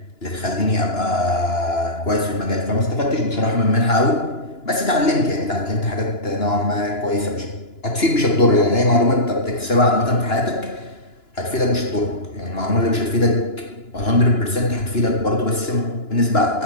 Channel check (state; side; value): late; right; 2.9 ms